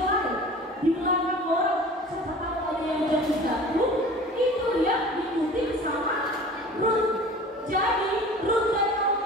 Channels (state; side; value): normal; both; correlation 0.42